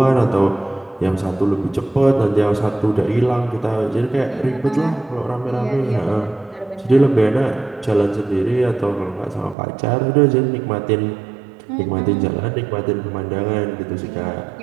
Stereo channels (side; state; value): left; drops out; at 9.6 s